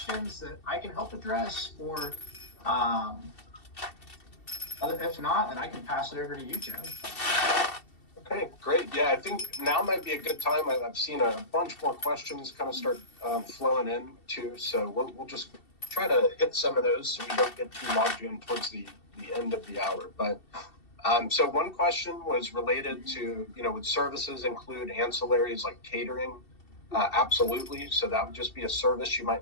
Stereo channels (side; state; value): right; late; 2.7 ms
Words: that I can help address? Or if not, then I can pass it over to you, Joe. Okay, great. Yeah, I think now might be a good time. I've seen a bunch more questions kind of start flowing in too. So we'll just try to hit some of those so we don't get too logged in towards the end of the hour. But so one question was related to, would services include ancillaries like catering? Absolutely. So that would just be a service you